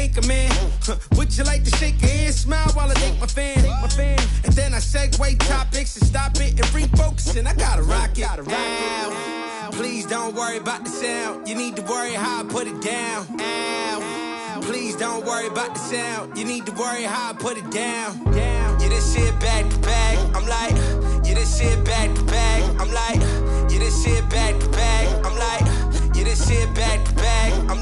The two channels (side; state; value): both; identical; correlation 1.00